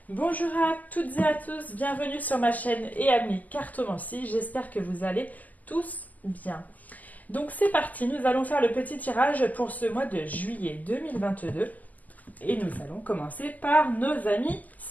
Bonjour à toutes et à tous, bienvenue sur ma chaîne et amis cartomancie, j'espère que vous allez tous bien. Donc c'est parti, nous allons faire le petit tirage pour ce mois de juillet 2022 et nous allons commencer par nos amis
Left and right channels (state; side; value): late; right; 0.080 ms